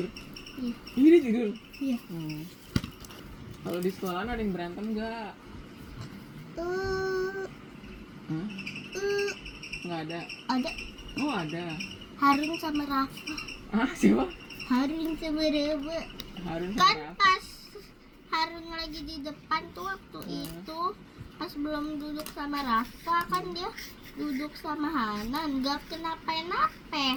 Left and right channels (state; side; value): identical; both; correlation 1.00